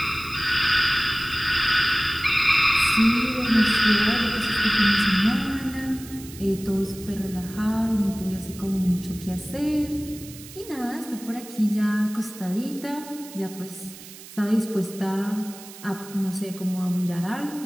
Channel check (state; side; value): noise; right; hiss, 17 dB below the sound